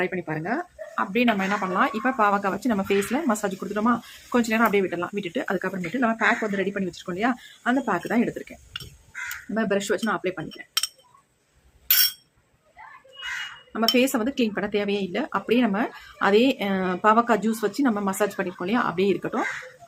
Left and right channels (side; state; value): both; identical; correlation 1.00